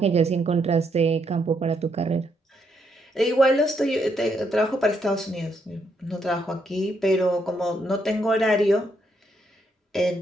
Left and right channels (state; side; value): normal; both; correlation 0.75